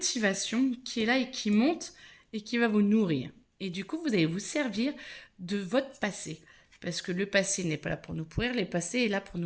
qui est là et qui monte et qui va vous nourrir. Et du coup, vous allez vous servir de votre passé. Parce que le passé n'est pas là pour nous pourrir, le passé est là pour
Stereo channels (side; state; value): both; identical; correlation 1.00